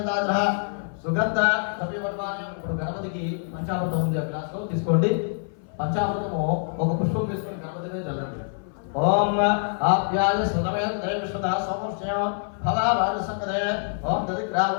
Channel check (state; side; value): silent; right; 57 dB below the other